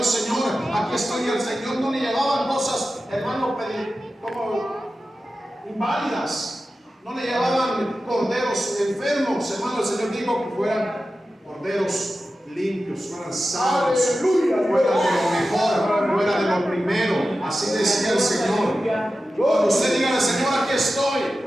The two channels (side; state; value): both; normal; correlation 0.93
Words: Señor, aquí estoy. Al Señor no le llevaban cosas, hermano, como inválidas, no le llevaban corderos enfermos, hermano. El Señor dijo que fueran corderos limpios, fueran sanos, fuera de lo mejor, fuera de lo primero. Así decía el Señor. Cuando usted diga al Señor, aquí estoy,